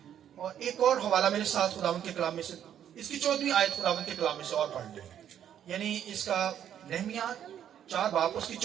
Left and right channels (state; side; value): quieter; left; 9.9 dB